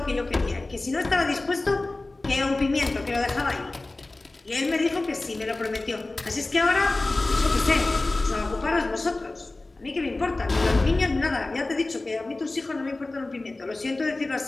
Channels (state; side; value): quieter; right; 3.0 dB